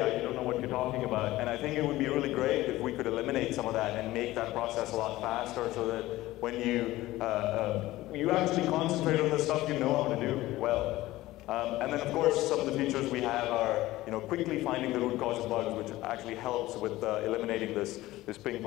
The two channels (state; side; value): quieter; right; 17.1 dB